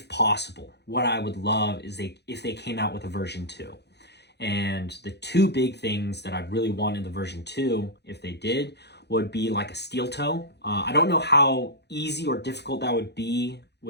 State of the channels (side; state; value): right; late; 0.49 ms